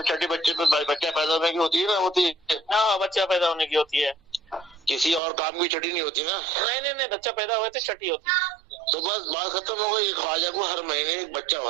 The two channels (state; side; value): drops out; left; at 5.2 s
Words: छठी बच्चे पे बच्चा पैदा होने की होती है ना, होती है। हाँ बच्चा पैदा होने की होती है, किसी और काम की छठी नहीं होती ना। नहीं बच्चा पैदा हुए तो छठी होती है। तो बस बात खत्म हो गई। ख्वाजा को हर महीने एक बच्चा